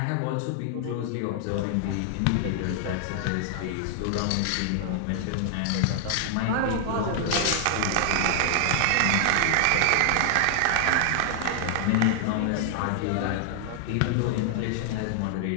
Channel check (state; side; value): different; both; correlation 0.00